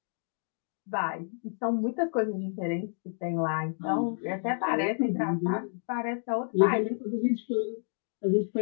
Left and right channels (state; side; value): silent; right; digital silence